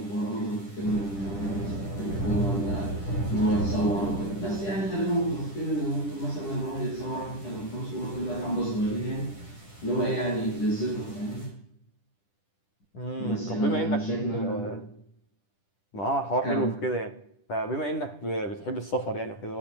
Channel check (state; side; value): late; right; 10 ms